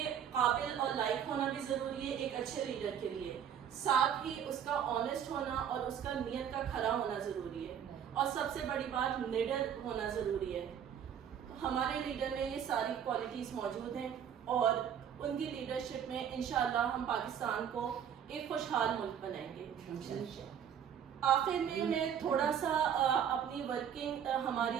قابل اور لائق ہونا بھی ضروری ہے ایک اچھے لیڈر کے لیے، ساتھ ہی اس کا آنیسٹ ہونا اور اس کا نیت کا کھرا ہونا ضروری ہے، اور سب سے بڑی بات نڈر ہونا ضروری ہے۔ ہمارے لیڈر میں یہ ساری کوالٹیز موجود ہیں، اور ان کی لیڈرشپ میں انشاءاللہ ہم پاکستان کو ایک خوشحال ملک بنائیں گے۔ آخر میں تھوڑا سا اپنی ورکنگ،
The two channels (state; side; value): quieter; left; 8.7 dB